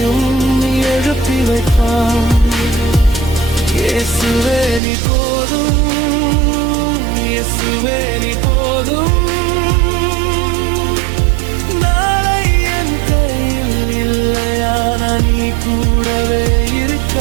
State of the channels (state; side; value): drops out; left; at 4.8 s